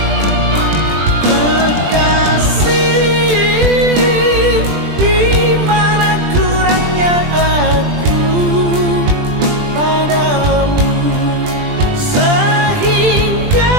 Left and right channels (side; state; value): left; late; 20 ms